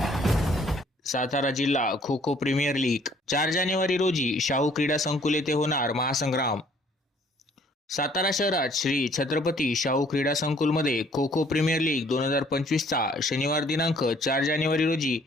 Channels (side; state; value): both; normal; correlation 0.60